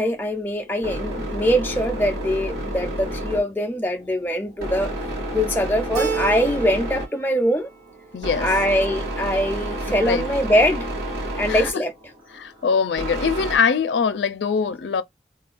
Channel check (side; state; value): both; normal; correlation 0.52